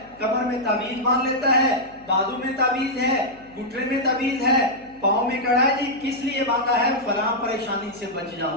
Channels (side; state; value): left; noise; hum, 26 dB below the sound